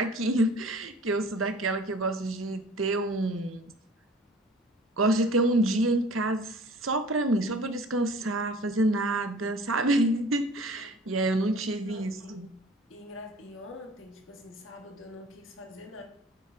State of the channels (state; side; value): normal; both; correlation 0.47